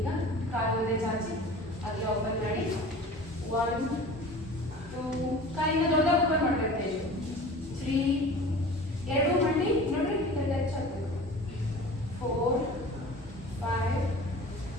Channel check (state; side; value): normal; both; correlation 0.40